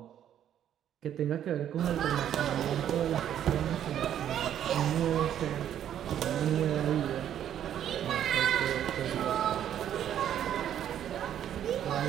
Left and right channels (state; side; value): quieter; left; 10.3 dB